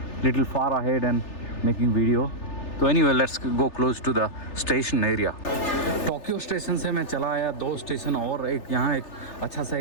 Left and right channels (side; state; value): right; late; 3.4 ms